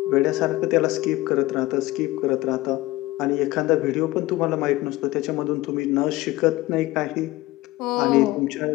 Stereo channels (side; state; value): right; quieter; 18.5 dB